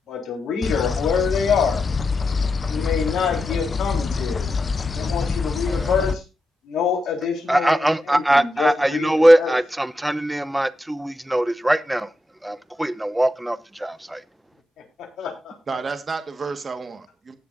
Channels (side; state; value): both; normal; correlation 0.87